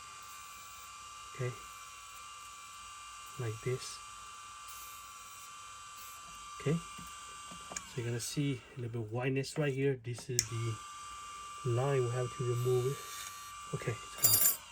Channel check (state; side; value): identical; both; correlation 1.00